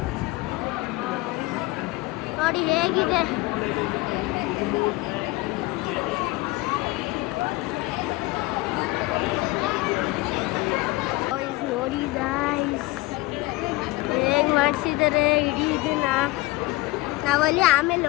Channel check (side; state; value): right; quieter; 20.7 dB